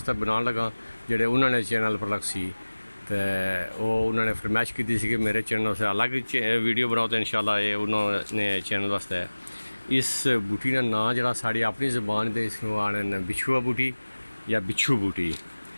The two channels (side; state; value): both; inverted; correlation -1.00